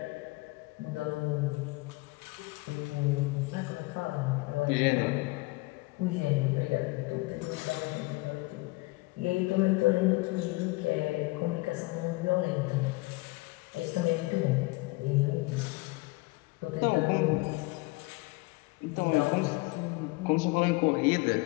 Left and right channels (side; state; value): right; quieter; 23.6 dB